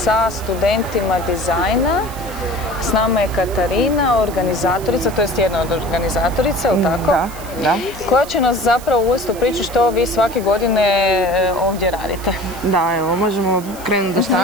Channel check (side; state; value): right; noise; hiss, 17 dB below the sound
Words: studentima dizajna. S nama je Katarina, organizatorica, to jest jedna od organizatorica, ili tako? Da. Koja će nas zapravo uvesti u priču što vi svake godine ovdje radite. Da, evo, možemo krenuti do